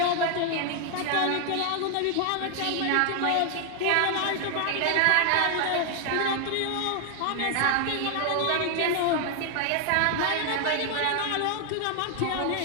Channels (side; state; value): both; different; correlation 0.00